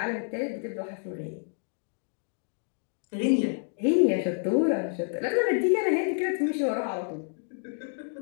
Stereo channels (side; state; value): right; silent; digital silence